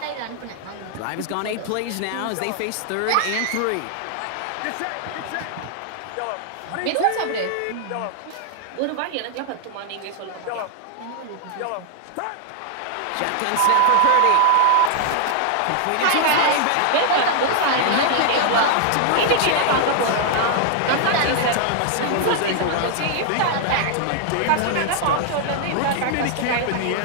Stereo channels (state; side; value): different; both; correlation 0.00